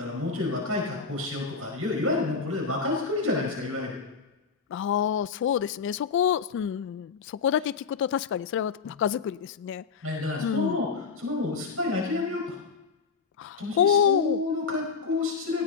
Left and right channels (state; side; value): quieter; right; 5.3 dB